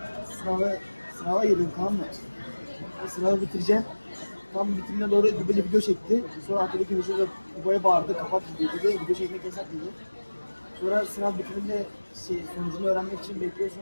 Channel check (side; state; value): both; inverted; correlation -1.00